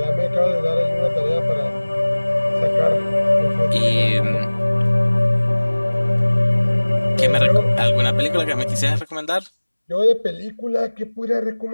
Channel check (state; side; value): inverted; both; correlation -1.00